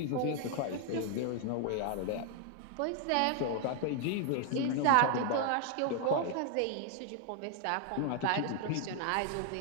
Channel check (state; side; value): different; both; correlation 0.00